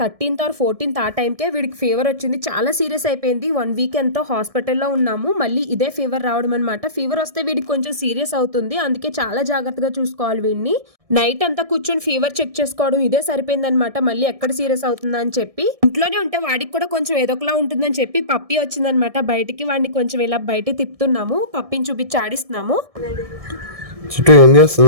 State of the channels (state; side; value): late; left; 1.6 ms